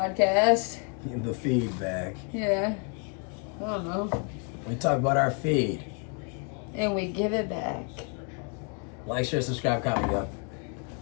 The feedback. Yeah. I don't know. We talk about our feed. And we give it back. Like, share, subscribe, comment, yo.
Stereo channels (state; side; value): quieter; right; 37.7 dB